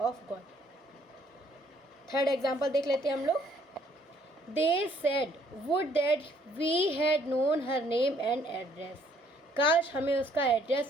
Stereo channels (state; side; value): normal; both; correlation 0.64